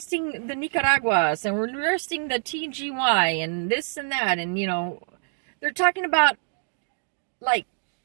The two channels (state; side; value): silent; left; digital silence